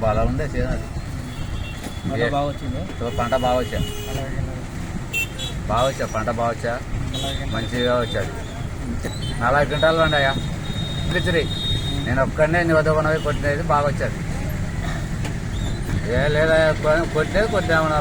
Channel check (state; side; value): identical; both; correlation 1.00